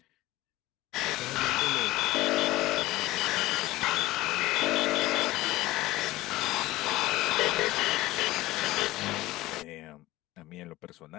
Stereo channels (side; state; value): right; quieter; 17.7 dB